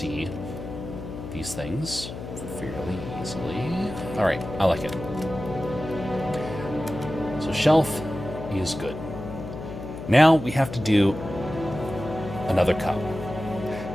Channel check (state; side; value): noise; left; hum, 9 dB below the sound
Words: these things fairly easily. All right, I like it. So shelf is good. Now we have to do another cup.